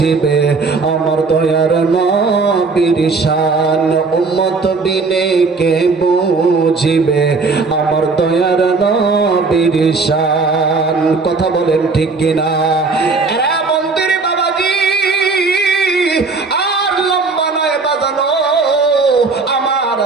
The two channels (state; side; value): quieter; left; 4.2 dB